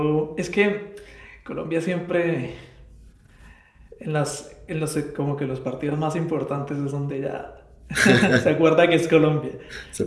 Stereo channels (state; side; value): identical; both; correlation 1.00